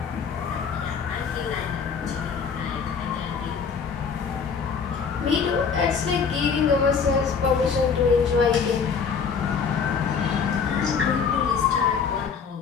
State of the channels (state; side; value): quieter; right; 6.0 dB